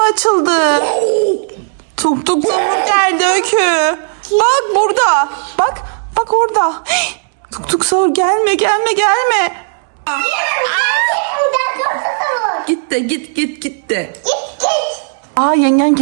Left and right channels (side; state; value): left; silent; digital silence